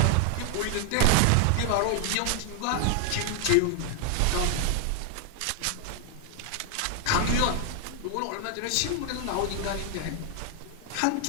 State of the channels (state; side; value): different; both; correlation 0.00